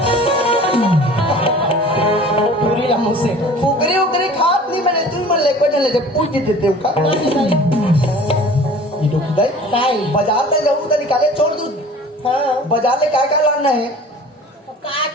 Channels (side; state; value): both; normal; correlation 0.45